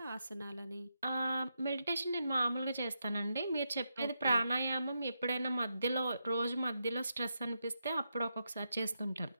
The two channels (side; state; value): both; inverted; correlation -0.84